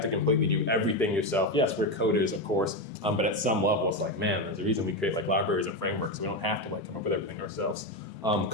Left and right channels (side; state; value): both; normal; correlation 0.12